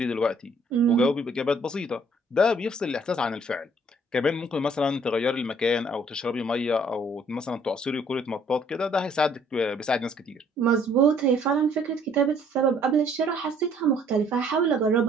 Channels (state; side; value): normal; both; correlation 0.61